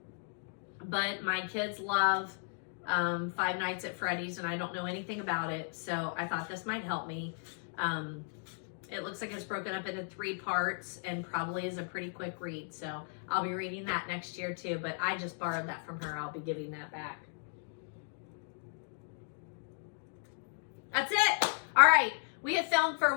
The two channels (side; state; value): right; silent; 54 dB below the other